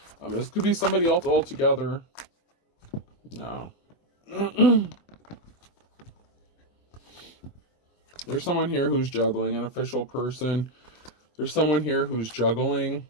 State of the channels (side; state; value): right; late; 24 ms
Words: This could be somebody else altogether. No. There's someone here who's juggling, an official person. There's someone here who's juggling